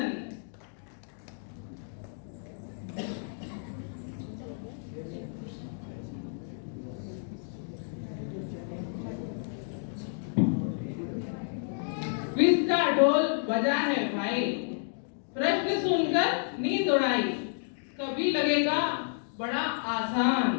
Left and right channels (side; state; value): right; silent; digital silence